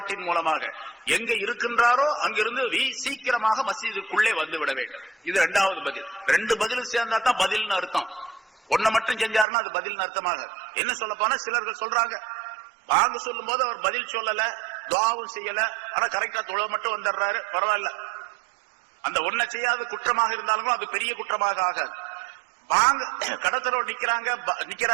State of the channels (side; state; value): left; drops out; at 9.5 s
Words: மூலமாக எங்க இருக்கின்றாரோ அங்கிருந்து சீக்கிரமாக மஸ்ஜிதுக்குள்ளே வந்து விட வேண்டும். இது இரண்டாவது பதில். ரெண்டு பதில் சேர்ந்தா தான் பதில்னு அர்த்தம். ஒன்ன மட்டும் செஞ்சாருன்னா அது பதில்னு அர்த்தமாக. என்ன சொல்ல போனா சிலர்கள் சொல்றாங்க, பாங்கு சொல்லும் போது அவர் பதில் சொல்லல, துஆவும் செய்யல, ஆனா கரெக்டா தொழ மட்டும் வந்துடுறாரு, பரவாயில்ல. அந்த ஒன்ன செய்யாத குற்றமாக இருந்தாலும் அது பெரிய குற்றமாக ஆகாது. பாங்கு கடத்தலோடு